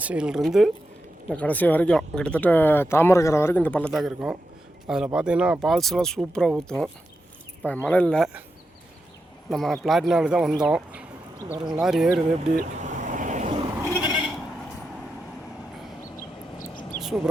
இந்த கடைசி வரைக்கும் கிட்டத்தட்ட தாமரைக்கரை வரைக்கும் இந்த பள்ளத்தாக்கு இருக்கும். அதில் பார்த்தீங்கன்னா ஃபால்ஸ்லாம் சூப்பராக ஊற்றும். இப்போ மழை இல்லை, நம்ம பிளாட்டினாவில் தான் வந்தோம். பாருங்கள் லாரி ஏறுது, எப்படி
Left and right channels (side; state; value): both; normal; correlation 0.88